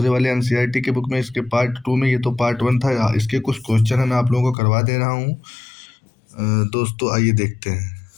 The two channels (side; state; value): right; drops out; at 4.5 s